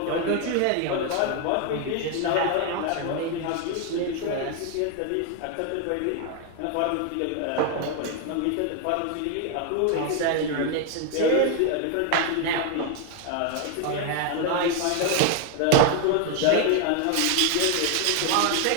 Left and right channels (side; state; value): both; different; correlation 0.01